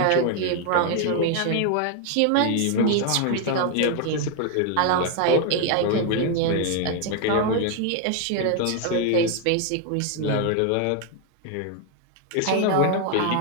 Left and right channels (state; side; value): different; both; correlation 0.01